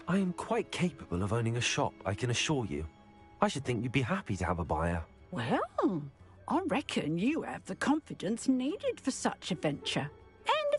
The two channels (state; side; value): identical; both; correlation 1.00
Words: I am quite capable of owning a shop, I can assure you. I should think you'd be happy to have a buyer. Well, I reckon you have the confidence needed for such a venture. And